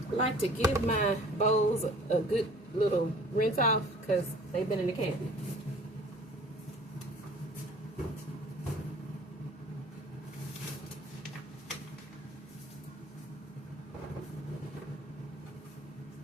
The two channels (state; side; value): normal; both; correlation 0.50